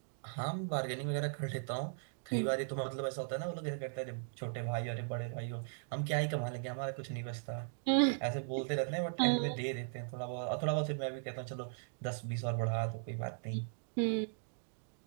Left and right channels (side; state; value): left; silent; digital silence